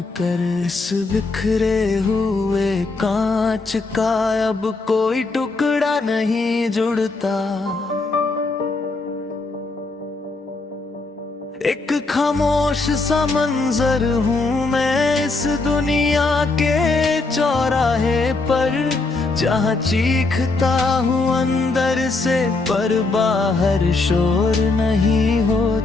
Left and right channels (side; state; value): right; quieter; 3.6 dB